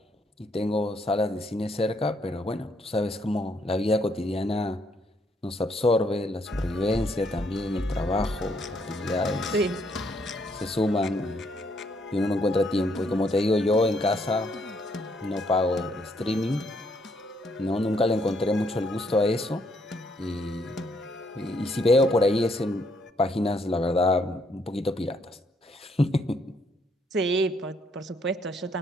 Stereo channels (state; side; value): normal; both; correlation 0.71